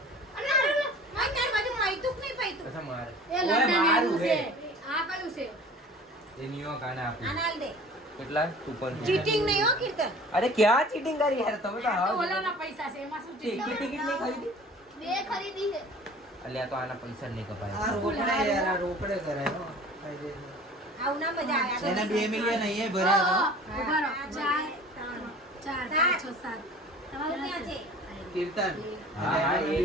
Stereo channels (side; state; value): both; normal; correlation 0.45